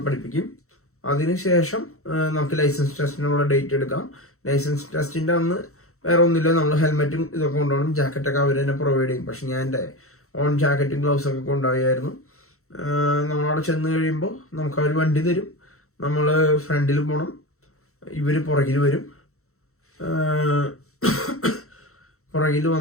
പഠിപ്പിക്കും. അതിനുശേഷം നമുക്ക് ലൈസൻസ് ടെസ്റ്റിനുള്ള ഡേറ്റ് എടുക്കാം. ലൈസൻസ് ടെസ്റ്റിന്റെ അന്ന് വേറെ ഒന്നുമില്ല, നമ്മൾ ഹെൽമെറ്റും ഇതൊക്കെ കൊണ്ടുപോകണം. ജാക്കറ്റൊക്കെ അവർ തന്നെ പ്രൊവൈഡ് ചെയ്യും. പക്ഷെ ഞാൻ എൻ്റെ ഓൺ ജാക്കറ്റും ഗ്ലൗസൊക്കെ കൊണ്ടുപോയായിരുന്നു. നമ്മളവിടെ ചെന്ന് കഴിയുമ്പോൾ നമുക്ക് അവർ വണ്ടി തരും. നമ്മൾ ഫ്രണ്ടിൽ പോകണം, ഇവർ പുറകിൽ വരും. പുറകിൽ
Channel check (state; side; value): late; right; 0.63 ms